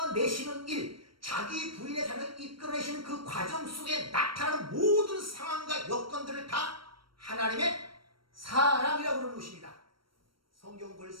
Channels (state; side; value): late; left; 0.74 ms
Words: 일, 자기 부인의 삶을 이끌어내시는 그 과정 속에 나타나는 모든 상황과 여건들을 다 하나님의 사랑이라고 부르는 것입니다.